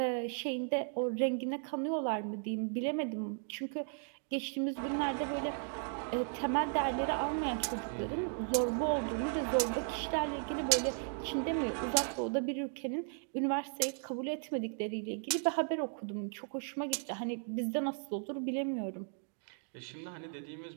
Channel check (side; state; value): left; silent; 54 dB below the other